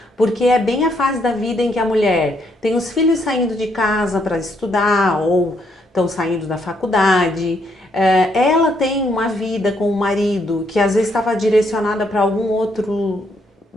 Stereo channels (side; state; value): both; normal; correlation 0.73